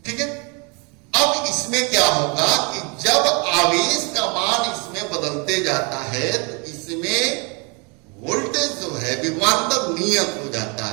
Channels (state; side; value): quieter; left; 32.2 dB